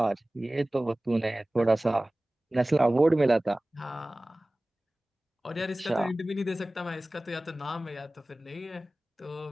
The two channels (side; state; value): both; normal; correlation 0.98